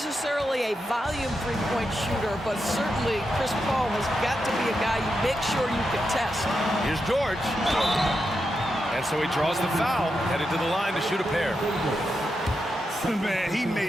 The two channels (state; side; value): normal; both; correlation 0.86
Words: a volume three-point shooter, but certainly Chris Paul has got to be a guy you make sure you can test. Here's George. And so he draws the foul, headed to the line to shoot a pair. Man, he